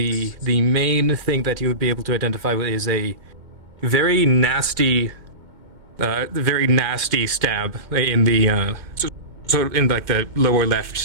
main thing that you would be able to identify with is a very nasty stab in the sort of in like the lower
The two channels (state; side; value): late; left; 2.2 ms